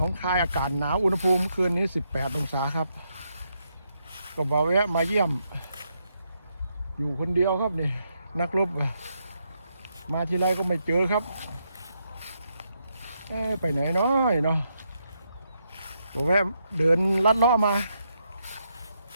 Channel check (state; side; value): inverted; both; correlation -0.79